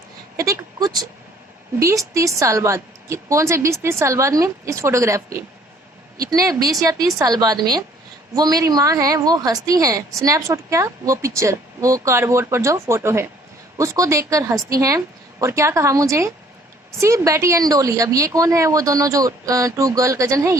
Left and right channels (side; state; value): both; normal; correlation 0.59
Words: कुछ 20-30 साल बाद, कौन से 20-30 साल बाद में, इस फोटोग्राफ के इतने 20 या 30 साल बाद में वो मेरी माँ है वो हंसती हैं। स्नैपशॉट क्या, वो पिक्चर, वो कार्डबोर्ड पर जो फोटो है उसको देखकर हंसती हैं। और क्या कहा मुझे, सी बेटी एंड डोली। अब ये कौन है, वो दोनों जो 2 गर्ल कजन है